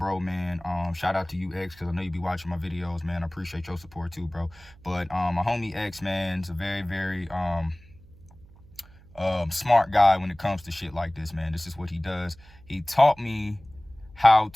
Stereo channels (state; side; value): noise; right; hum, 24 dB below the sound